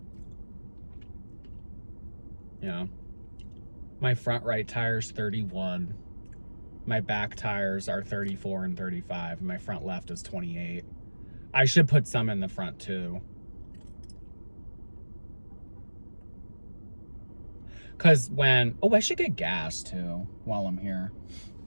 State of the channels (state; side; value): inverted; both; correlation -1.00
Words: Yeah. My front right tire's 31. My back tires are 34 and 35. And my front left is 28. I should put some in the front too. Cause I should get gas too while I'm here.